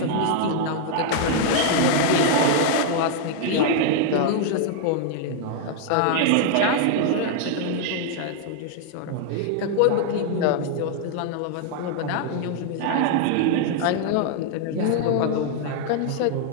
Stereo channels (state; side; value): different; both; correlation 0.00